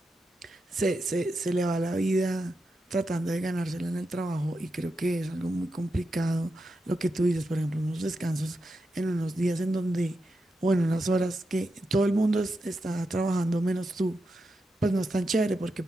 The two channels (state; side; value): normal; both; correlation 0.87